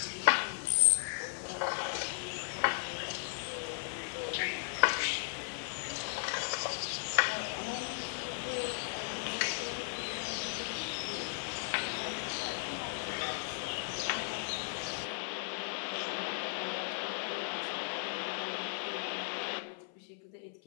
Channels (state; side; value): silent; right; 54 dB below the other